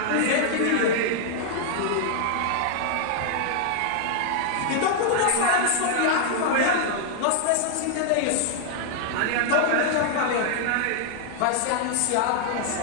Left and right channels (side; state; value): both; different; correlation 0.00